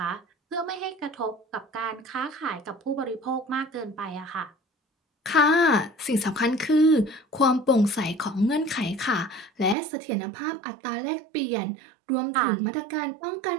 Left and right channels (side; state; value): left; drops out; at 9.8 s